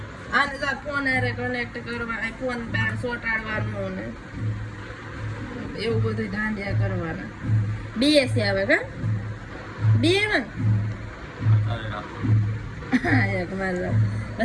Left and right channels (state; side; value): identical; both; correlation 1.00